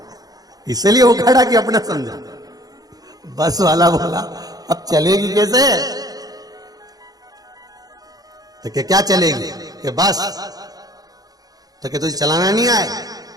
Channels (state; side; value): late; left; 0.18 ms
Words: इसलिए उखाड़ा कि अपना समझा। बस वाला बोला अब चलेगी कैसे? तो क्या चलेगी कि बस, तो क्या तुझे चलाना नहीं आए?